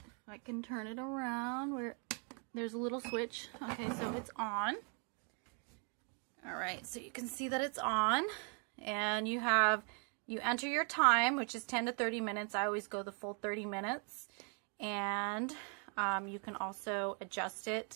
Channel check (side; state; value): left; quieter; 38.7 dB